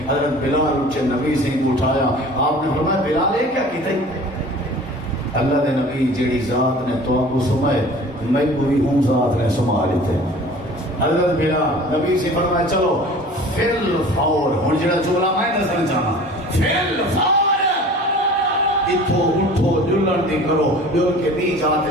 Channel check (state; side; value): normal; both; correlation 0.44